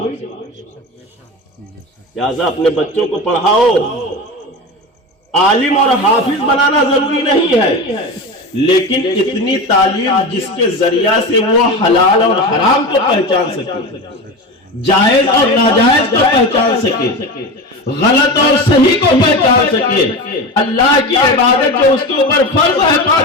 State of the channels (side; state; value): both; normal; correlation 0.25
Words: لہٰذا اپنے بچوں کو پڑھاؤ۔ عالم اور حافظ بنانا ضروری نہیں ہے، لیکن اتنی تعلیم جس کے ذریعہ سے وہ حلال اور حرام کو پہچان سکے، جائز اور ناجائز کو پہچان سکے، غلط اور صحیح کو پہچان سکے، اللہ کی عبادت جو اس کے اوپر فرض ہے